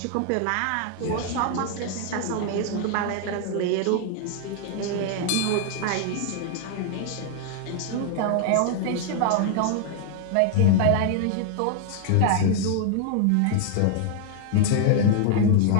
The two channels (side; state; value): both; different; correlation 0.00